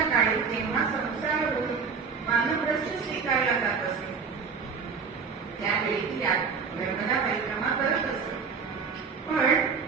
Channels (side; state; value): left; quieter; 5.6 dB